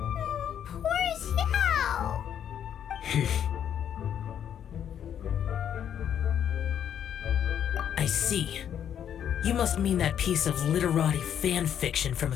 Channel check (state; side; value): quieter; right; 9.3 dB